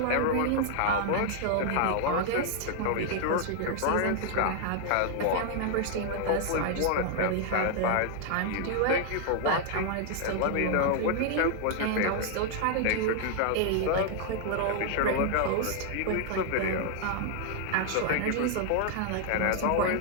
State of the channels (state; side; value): different; both; correlation 0.00